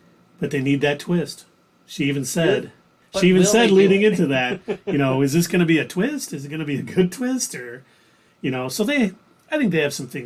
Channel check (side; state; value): both; identical; correlation 1.00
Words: But they need that twist. She even said, But will they do leading it? into that, is this going to be a twist? Is it going to be a good twist? Or, so I think they have some